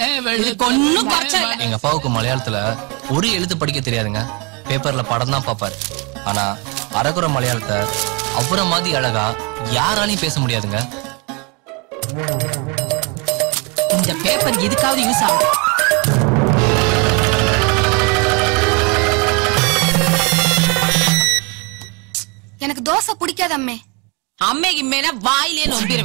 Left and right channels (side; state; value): left; quieter; 30.8 dB